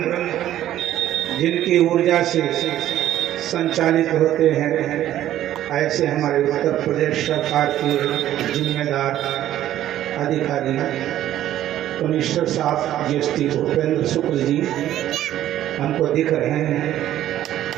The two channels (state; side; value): quieter; left; 12.6 dB